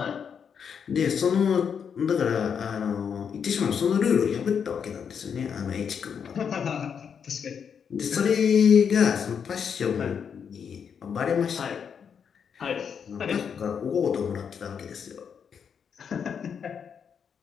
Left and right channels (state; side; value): quieter; right; 7.1 dB